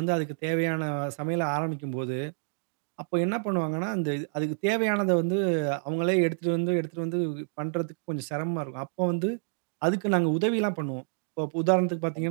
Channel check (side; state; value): left; silent; digital silence